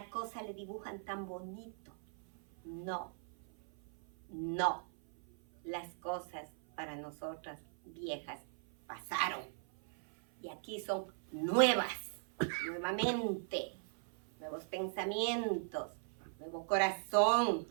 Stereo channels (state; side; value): silent; left; 52 dB below the other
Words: cosa le dibujan tan bonito. No, no. Las cosas para nosotras viejas pasaron y aquí son nuevas, nuevamente, nuevos pensamientos, nuevo corazón,